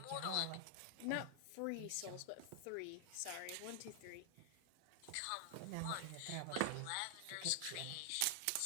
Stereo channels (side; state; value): both; different; correlation 0.00